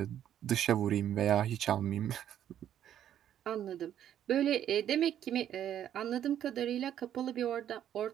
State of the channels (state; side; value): quieter; left; 10.5 dB